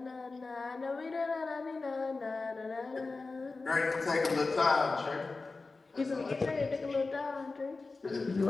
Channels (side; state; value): right; quieter; 3.8 dB